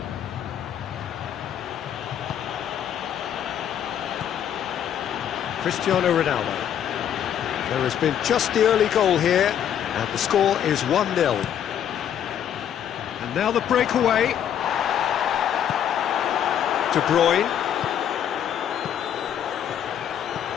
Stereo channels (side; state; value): right; quieter; 9.6 dB